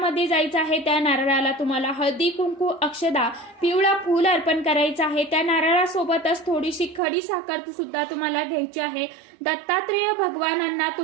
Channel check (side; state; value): left; drops out; at 7.0 s